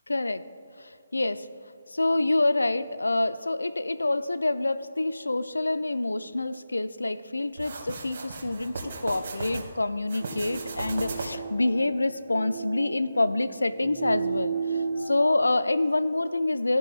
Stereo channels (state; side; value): inverted; both; correlation -0.96